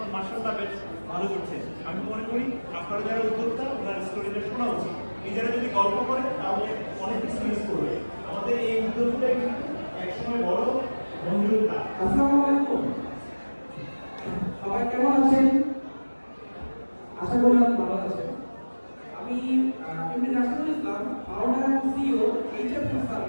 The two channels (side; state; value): both; inverted; correlation -1.00